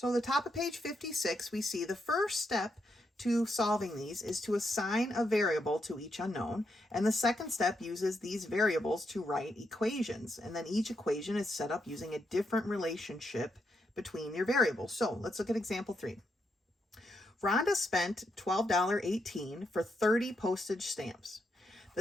the top of page 56, we see the first step to solving these is to assign a variable to each unknown, and the second step uses these variables to write equations, and then each equation is set up using a different relationship between your variables. So let's look at example 3. Rhonda spent $12.18 for 30 postage stamps.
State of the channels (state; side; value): normal; both; correlation 0.81